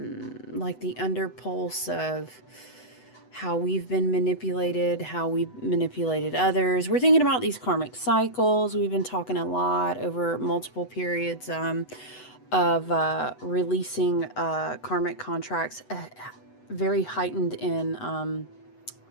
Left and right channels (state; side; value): late; right; 8.0 ms